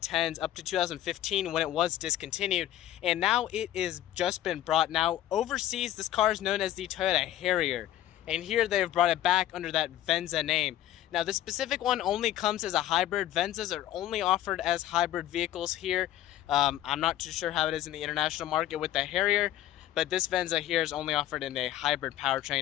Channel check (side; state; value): right; quieter; 12.9 dB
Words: up to 2015 when it was discontinued, and now it is just been brought. Now overseas this car is known as the Toyota Harrier, and here they've brought it back under that Venza name. Now this specific one only comes as a hybrid. Venzas are only offered as hybrid vehicles here. I'm not too sure how it is in the international market with the Harrier, but this Venza here is only offered in a hybrid